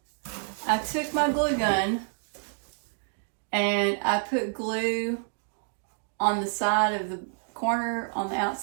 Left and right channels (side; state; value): left; silent; digital silence